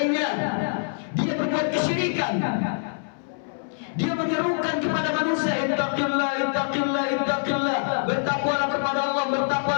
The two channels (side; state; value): right; silent; 62 dB below the other